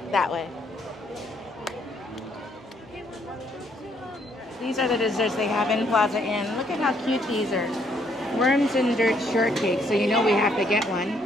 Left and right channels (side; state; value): both; normal; correlation 0.69